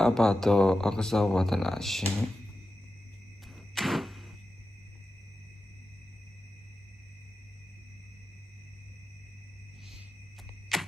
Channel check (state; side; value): normal; both; correlation 0.91